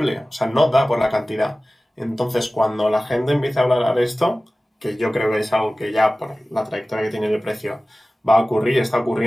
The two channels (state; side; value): normal; both; correlation 0.97